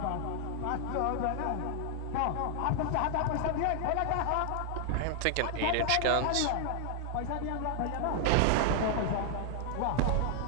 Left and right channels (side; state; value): both; different; correlation 0.00